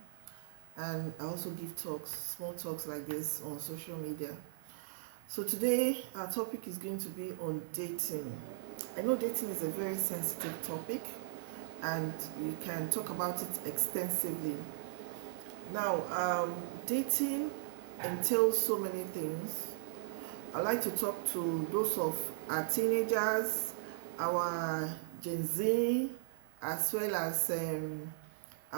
and I also give talks, small talks like this on social media. So today, our topic is going to be on dating. I know dating is a very sensitive topic, and we can talk about it extensively. Now, dating entails so many things. I like to talk to those of our teenagers, our Gen Z, as well as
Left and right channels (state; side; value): silent; left; 53 dB below the other